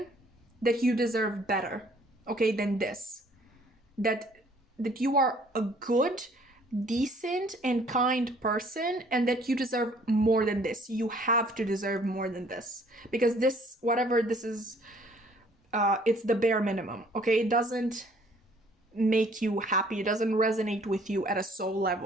that you deserve better, okay, than this. That you are a good, decent, and kind person, and that you deserve more than this. You have to deserve more than this, because this, whatever this is, it's the bare minimum, okay? It doesn't make you happy. It doesn't resonate with you at a soul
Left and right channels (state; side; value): normal; both; correlation 0.59